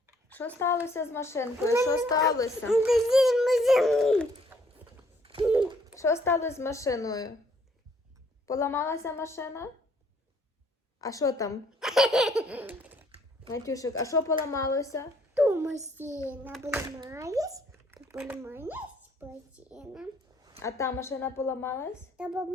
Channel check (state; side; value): normal; both; correlation 0.64